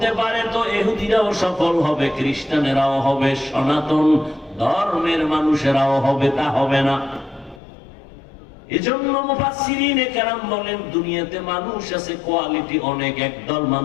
পারে তো ইহুদিরাও সফল হবে, খ্রিস্টানেরাও হবে, সনাতন ধর্মের মানুষেরাও হবে, তা হবে না। এজন্য মুফাসসিরিনে কেরাম বলেন দুনিয়াতে মানুষ আছে কোয়ালিটি অনেক, একদল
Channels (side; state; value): right; drops out; at 7.6 s